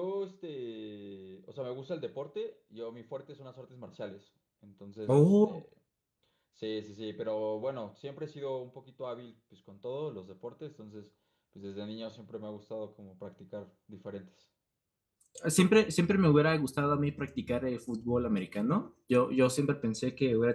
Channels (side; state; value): both; identical; correlation 1.00